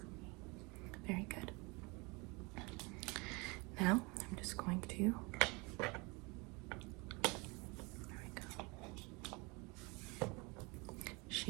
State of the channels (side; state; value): left; quieter; 27.8 dB